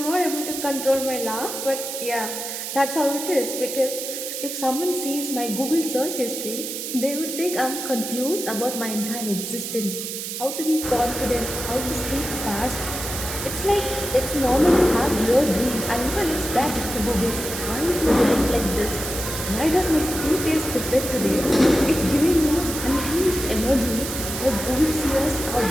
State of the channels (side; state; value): right; noise; hiss, 6 dB below the sound